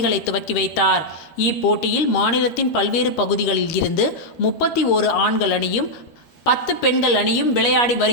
துவக்கி வைத்தார். இப்போட்டியில் மாநிலத்தின் பல்வேறு பகுதிகளில் இருந்து 31 ஆண்கள் அணியும் 10 பெண்கள் அணியும் விளையாடி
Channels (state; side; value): late; right; 13 ms